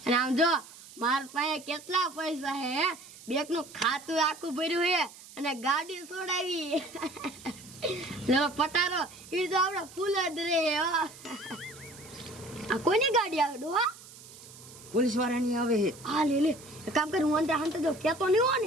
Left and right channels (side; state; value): right; noise; hiss, 19 dB below the sound